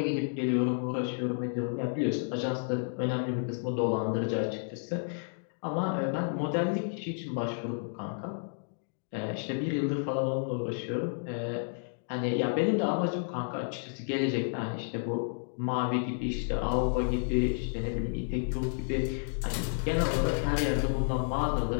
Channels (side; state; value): right; silent; digital silence